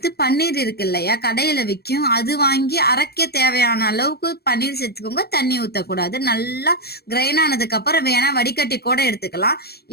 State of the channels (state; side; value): late; right; 0.46 ms